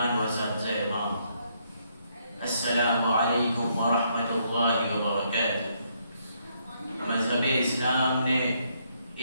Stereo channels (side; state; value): both; inverted; correlation -0.73